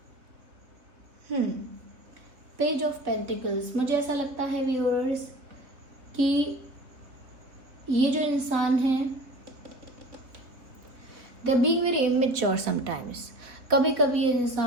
पेज ऑफ पेंटिकल्स, मुझे ऐसा लगता है व्यूअर्स कि ये जो इंसान है they being very immature sometimes. कभी कभी ये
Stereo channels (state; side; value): late; left; 3.4 ms